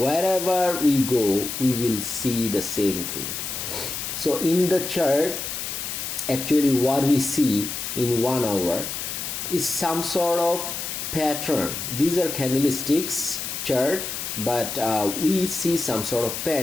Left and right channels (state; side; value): noise; left; hiss, 5 dB below the sound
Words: we go, we will see the same thing. So in the chart, actually what we see in 1 hour is some sort of pattern. These are candlesticks chart, but we see some sort of